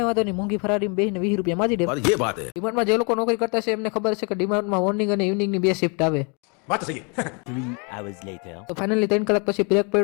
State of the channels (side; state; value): right; quieter; 34.2 dB